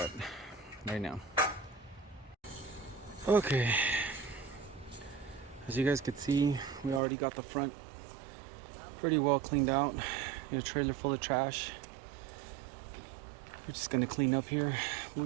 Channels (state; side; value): drops out; left; at 7.0 s